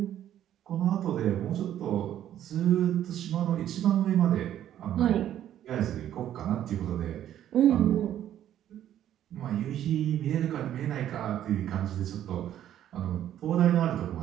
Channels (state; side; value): quieter; left; 11.3 dB